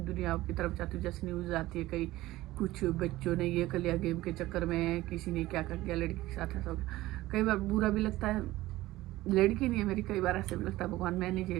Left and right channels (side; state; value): left; quieter; 17.2 dB